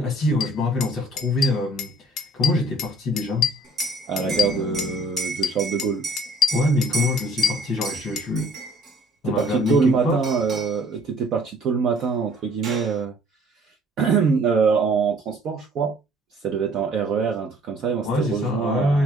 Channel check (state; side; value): normal; both; correlation 0.55